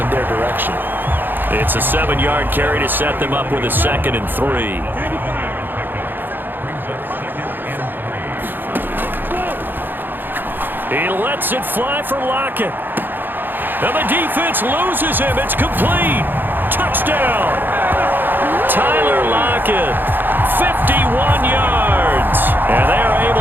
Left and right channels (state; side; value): late; left; 0.093 ms